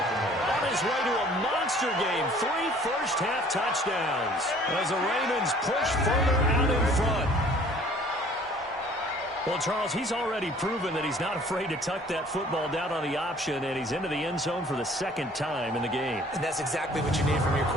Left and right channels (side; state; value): both; normal; correlation 0.53